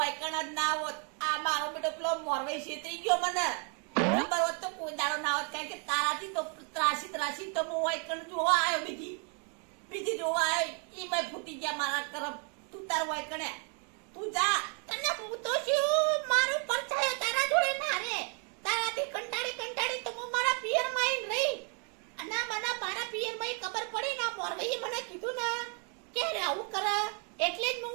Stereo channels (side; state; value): left; quieter; 39.1 dB